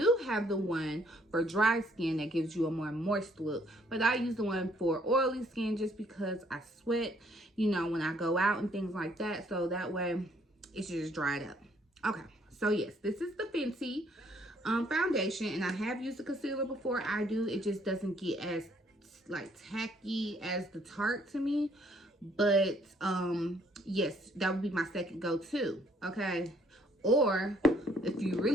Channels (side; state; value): both; normal; correlation 0.65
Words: have the one for dry skin that gives you a more moist look, but I use the one for oily skin just because I sweat, you know, when I go out and things like that, so that way it should just dry it up. Okay, so yes, this is the Fenty foundation, and I have used the concealer before. It just doesn't get as like tacky as the Tarte to me, but yes, that would be my second go-to. Okay, or if you